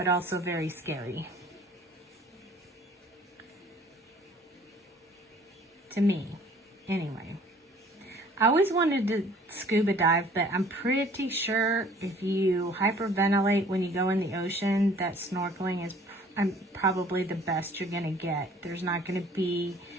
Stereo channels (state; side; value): normal; both; correlation 0.54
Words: also very scary. To me, anyway. I always wanted to scuba dive, but I'm pretty sure if you hyperventilate when you go in the ocean, that snorkeling is probably the best you're going to get. There's not going to be